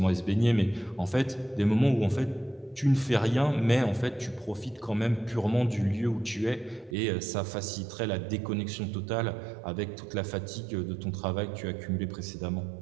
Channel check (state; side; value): drops out; left; at 7.0 s